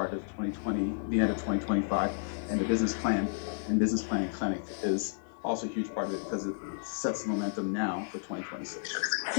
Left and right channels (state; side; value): silent; right; digital silence